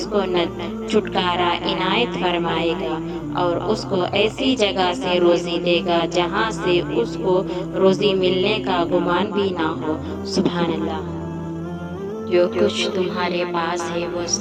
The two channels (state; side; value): identical; both; correlation 1.00